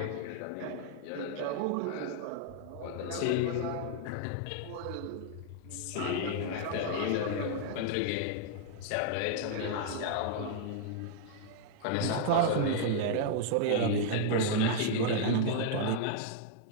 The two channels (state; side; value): different; both; correlation -0.01